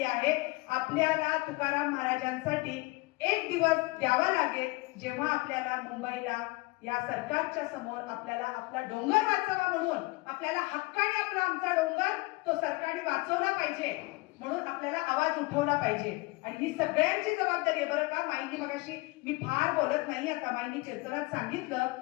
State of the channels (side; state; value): right; quieter; 24.5 dB